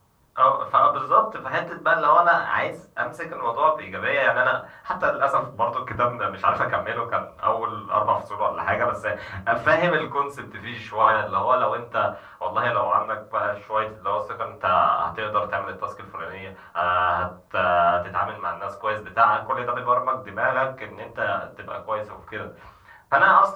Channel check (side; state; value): both; identical; correlation 1.00